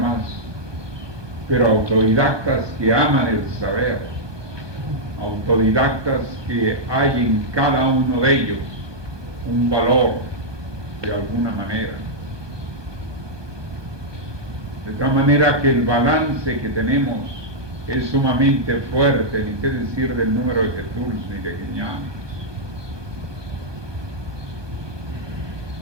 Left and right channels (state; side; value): late; left; 1.2 ms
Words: pero autodidactas que aman el saber, autodidactas que hay en cada uno de ellos un valor de alguna manera. De tal manera que el balance que tenemos es sumamente fuerte, ni qué decir del número de Jesús ni de Guiñanes.